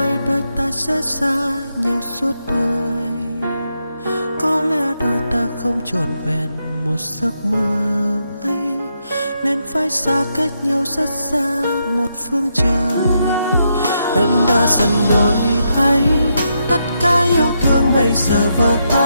đôi ta sẽ xa nhau suốt đời. Có lẽ đôi ta không trọn vẹn một giấc mơ ấy, nên phải xa cách nhau rất xa một phương trời. Em đã dần đổi thay, tất cả yêu thương bây giờ vỡ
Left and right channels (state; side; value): inverted; both; correlation -0.81